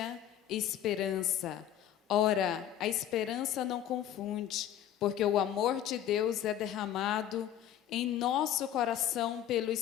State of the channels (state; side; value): quieter; right; 11.0 dB